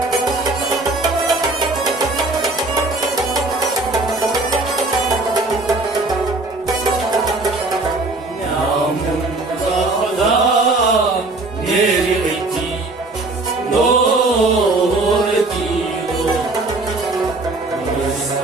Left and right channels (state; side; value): quieter; left; 3.1 dB